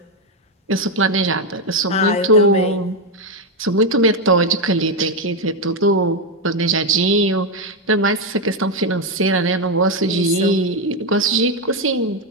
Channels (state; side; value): normal; both; correlation 0.05